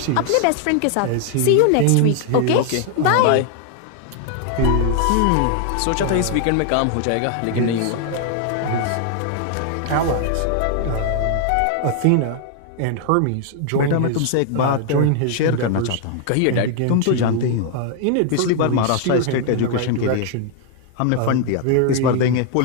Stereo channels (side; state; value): both; different; correlation 0.00